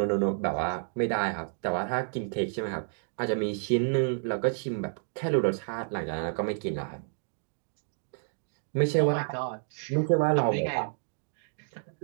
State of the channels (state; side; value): silent; left; digital silence